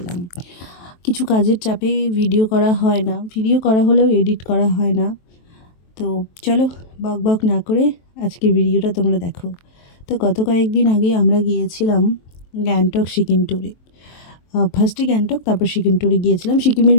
কিছু কাজের চাপে ভিডিও করা হয় না, ভিডিও করা হলেও এডিট করা হয় না। তো চলো বক বক না করে আজকের ভিডিওটা তোমরা দেখো। তো গত কয়েকদিন আগে আমরা গিয়েছিলাম গ্যাংটক সিকিম ট্যুরে। ফার্স্টে গ্যাংটক, তারপর সিকিম ট্যুরে গিয়েছিলাম। সিকিমের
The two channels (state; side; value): late; right; 23 ms